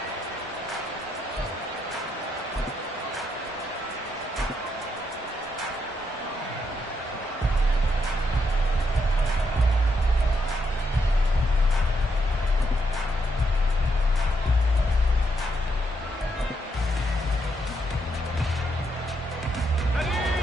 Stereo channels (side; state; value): both; normal; correlation 0.79